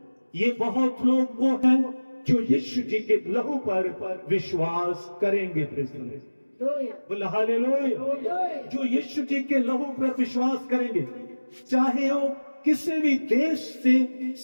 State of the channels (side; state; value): both; inverted; correlation -1.00